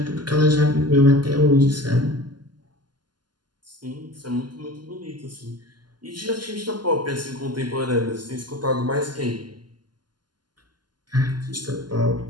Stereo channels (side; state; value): left; late; 0.71 ms